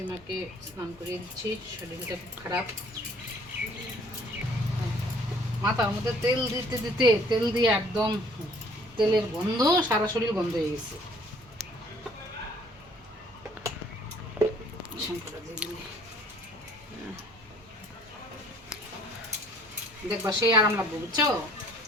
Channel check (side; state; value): both; normal; correlation 0.57